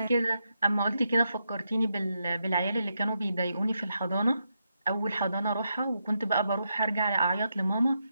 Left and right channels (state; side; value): inverted; both; correlation -0.83